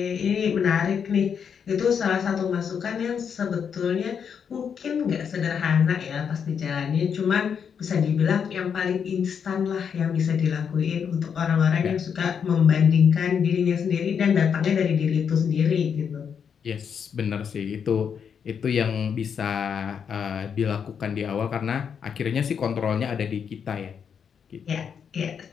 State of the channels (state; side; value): quieter; right; 7.2 dB